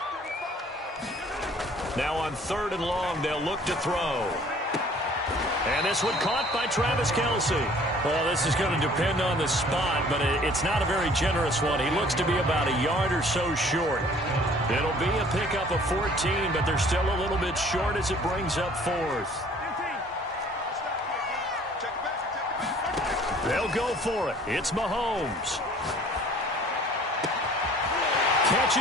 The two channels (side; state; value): both; normal; correlation 0.54